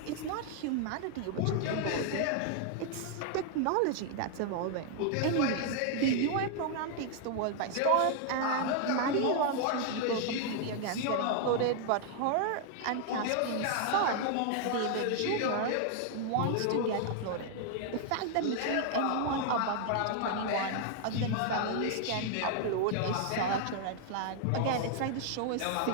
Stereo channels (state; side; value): different; both; correlation 0.00